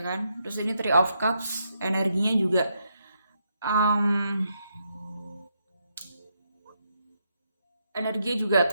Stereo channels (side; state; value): both; inverted; correlation -0.79